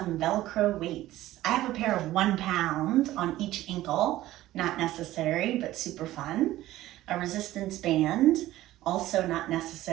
Velcro weights, I have a pair of 1 pound on each ankle, not necessary, but super fun. A resistance band, also not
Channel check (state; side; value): quieter; left; 15.3 dB